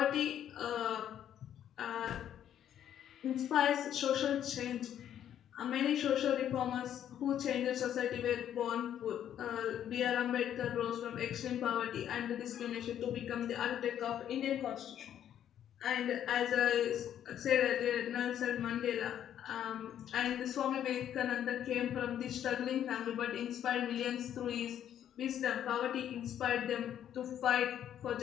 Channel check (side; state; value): right; quieter; 10.2 dB